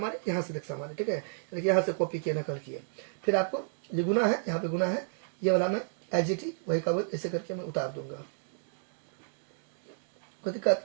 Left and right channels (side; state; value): left; silent; digital silence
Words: यहाँ से देख हमारे। ठीक है, यानी यहाँ से कॉपी किए, नकल किए, फिर आपको ये गुना है, यहाँ पे गुना है, ये वाला मैं एज इट इज वही का वही ऐसे करके मैं उतार दूंगा, कोई